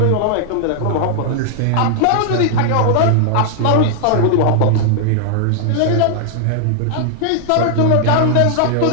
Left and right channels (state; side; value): different; both; correlation -0.01